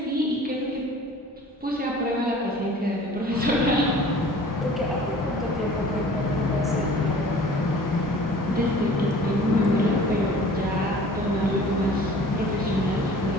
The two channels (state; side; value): normal; both; correlation 0.47